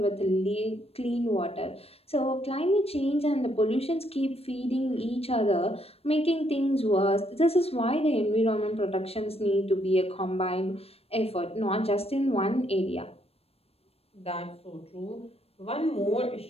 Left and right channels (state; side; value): late; right; 0.29 ms